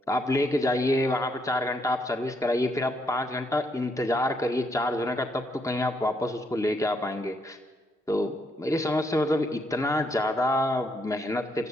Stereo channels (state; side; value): normal; both; correlation 0.75